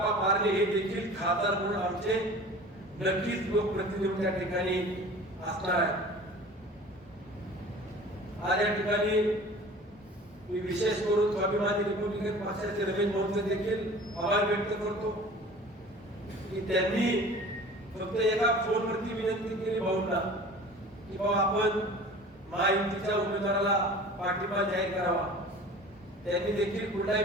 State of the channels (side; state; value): both; normal; correlation 0.42